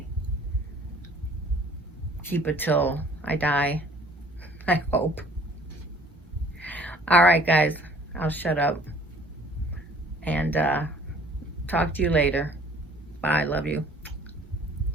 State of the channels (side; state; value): both; normal; correlation 0.54